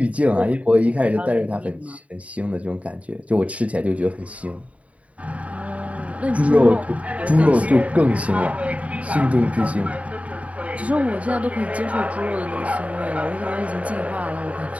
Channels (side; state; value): left; late; 0.067 ms